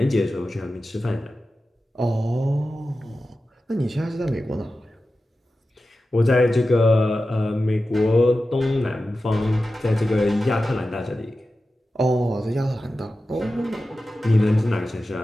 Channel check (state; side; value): normal; both; correlation 0.93